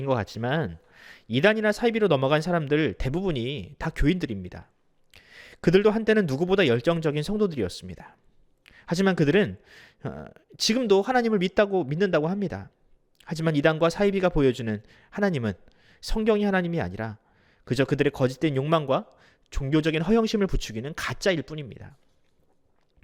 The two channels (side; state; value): both; identical; correlation 1.00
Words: 것 같지만 이단이나 사이비로 넘어간 사람들 대부분이 다 교인들입니다. 그들도 한때는 누구보다 열정적인 성도들이었습니다. 하지만 그들은 지금도 하나님을 믿는다고 합니다. 하지만 이단과 사이비가 보여주는 하나님은 성경이 하나님이 아니라 그저 그들의 거짓된 욕망과 종교적인 허영심을 부추기는 가짜일 뿐입니다.